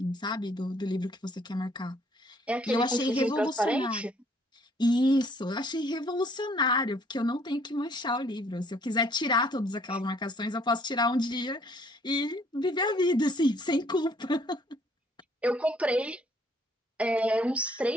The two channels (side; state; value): both; normal; correlation 0.62